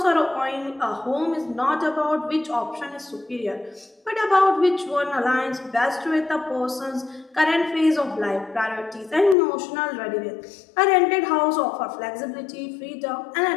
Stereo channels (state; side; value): drops out; right; at 9.3 s